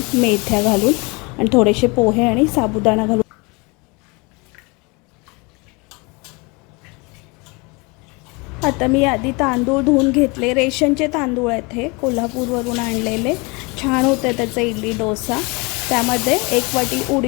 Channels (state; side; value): quieter; right; 28.1 dB